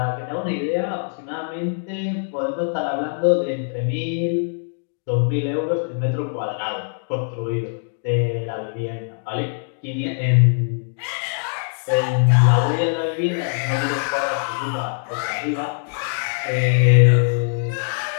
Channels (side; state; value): right; silent; digital silence